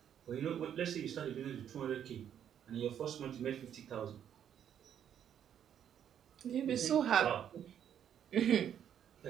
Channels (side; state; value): left; quieter; 9.4 dB